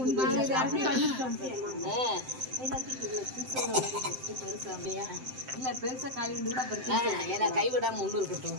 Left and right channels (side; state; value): left; late; 7.7 ms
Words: இல்ல பெருசா காலி உண்டு கூட கைவிடாம ஒண்ணு இருக்கட்டும்.